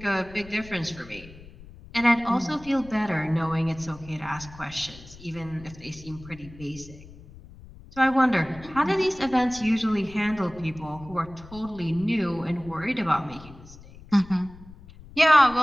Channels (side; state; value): left; noise; rumble, 19 dB below the sound